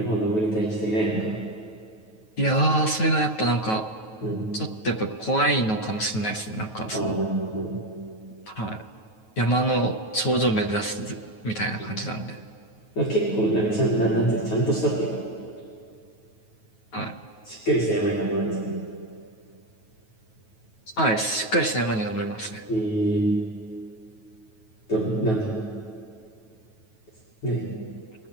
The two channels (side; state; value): right; late; 9.3 ms